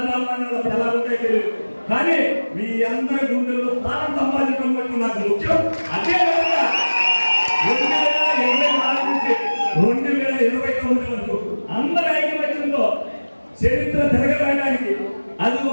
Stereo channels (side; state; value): both; inverted; correlation -1.00